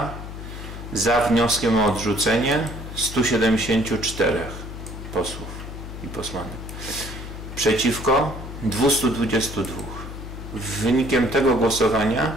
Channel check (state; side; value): noise; left; hum, 10 dB below the sound